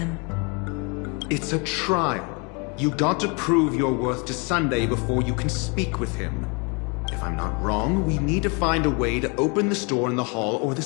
It's a trial. You got to prove your worth to Sunday before you can speak with him. If I'm not wrong, we need to find a way to open this door in the hall, or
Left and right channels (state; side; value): quieter; right; 32.6 dB